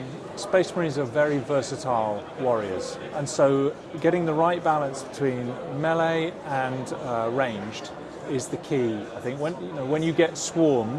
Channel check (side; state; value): both; identical; correlation 1.00